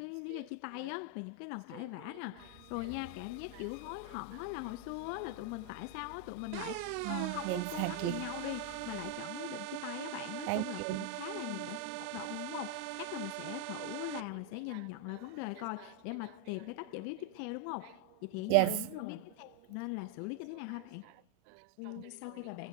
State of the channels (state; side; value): different; both; correlation 0.00